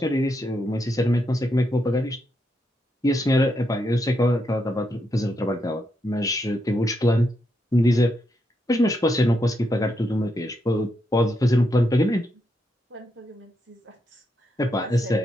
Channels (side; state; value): both; normal; correlation 0.81